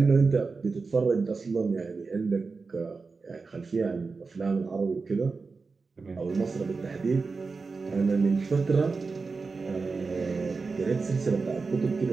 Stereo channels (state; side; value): quieter; left; 4.4 dB